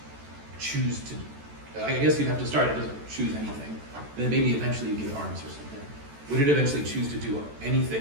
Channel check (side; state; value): left; late; 14 ms